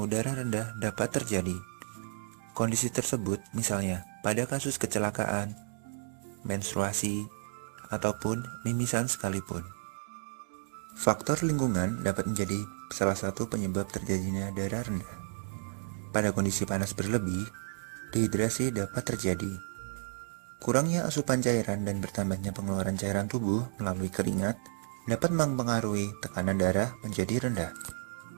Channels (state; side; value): silent; left; 56 dB below the other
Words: darah rendah dapat terjadi. Kondisi tersebut misalnya pada kasus kecelakaan, menstruasi, ataupun mimisan sekalipun. Faktor lingkungan dapat menjadi salah satu penyebab terjadinya darah rendah. Pada kondisi panas berlebih, dehidrasi dapat terjadi. Kurangnya asupan cairan dan bertambahnya pengeluaran cairan tubuh melalui keringat dapat mempengaruhi tekanan darah menjadi rendah.